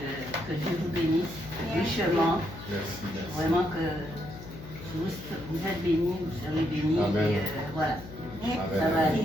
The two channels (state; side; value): noise; left; hum, 13 dB below the sound